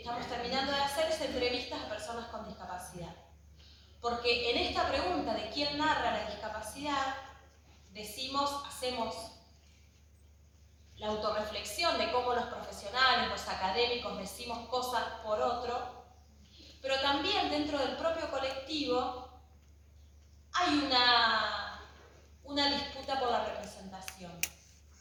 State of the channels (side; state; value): both; identical; correlation 1.00